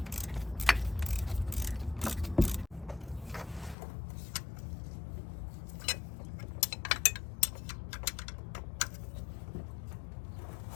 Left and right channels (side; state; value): right; drops out; at 3.8 s